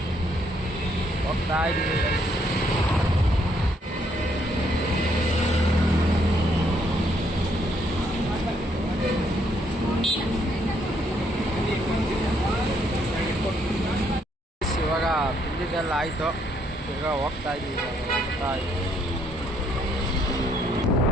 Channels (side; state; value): both; normal; correlation 0.71